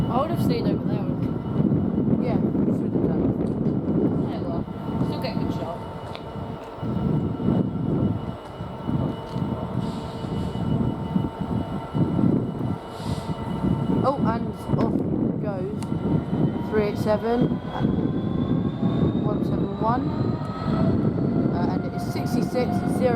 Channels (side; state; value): both; identical; correlation 1.00